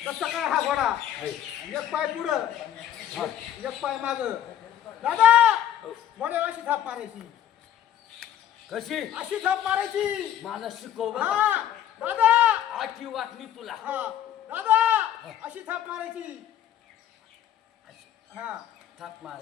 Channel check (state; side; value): quieter; right; 10.8 dB